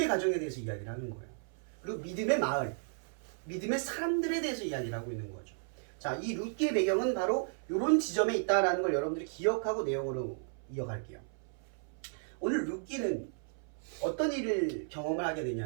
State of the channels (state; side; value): silent; left; 55 dB below the other